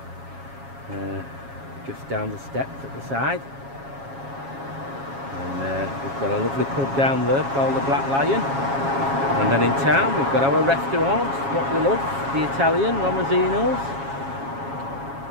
just down the steps at the side. And we've got a lovely pub down there called the Black Lion. And then in town we've got our restaurant, what we love, the Italian, Romazino's.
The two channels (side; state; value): left; late; 7.3 ms